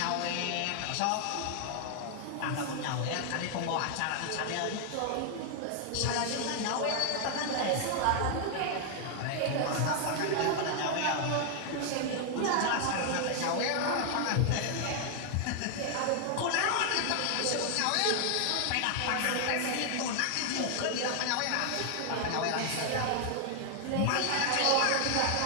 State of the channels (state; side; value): different; both; correlation 0.00